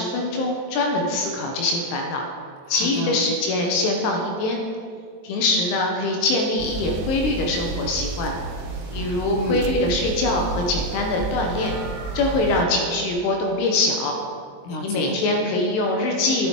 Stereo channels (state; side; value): late; right; 23 ms